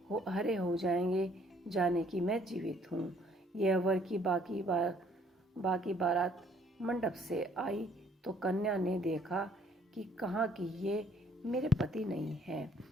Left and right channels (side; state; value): both; normal; correlation 0.62